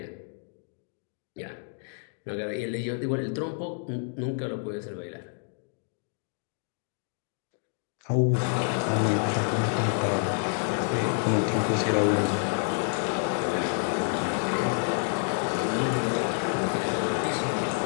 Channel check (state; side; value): silent; right; 59 dB below the other